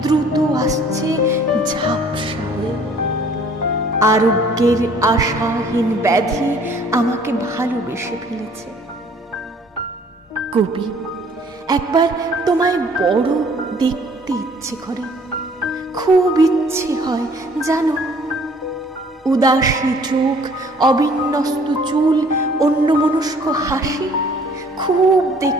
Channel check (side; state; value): both; normal; correlation 0.56